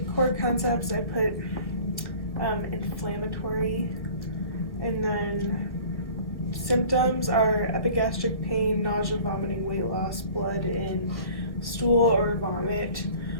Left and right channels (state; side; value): late; right; 1.1 ms